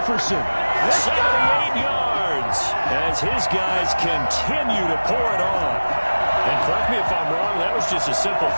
78 yards, as his guys continue to pour it on. And correct me if I'm wrong, that was just a simple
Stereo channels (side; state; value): both; inverted; correlation -1.00